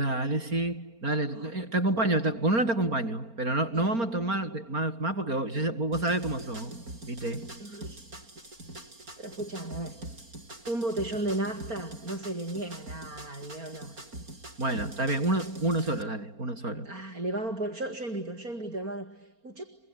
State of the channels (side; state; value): left; late; 4.3 ms